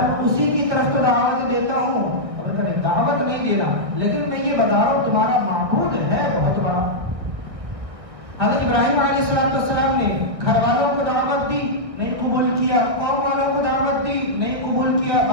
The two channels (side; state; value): left; late; 1.6 ms